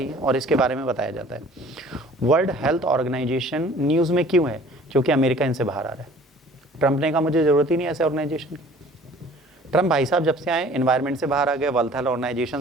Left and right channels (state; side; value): normal; both; correlation 0.50